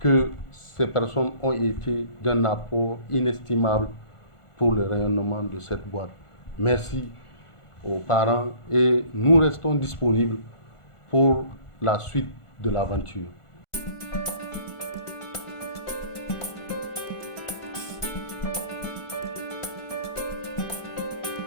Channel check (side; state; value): right; late; 1.4 ms